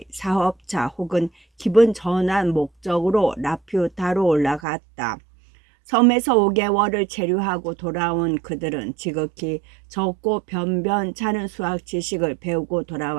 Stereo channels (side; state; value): left; drops out; at 4.6 s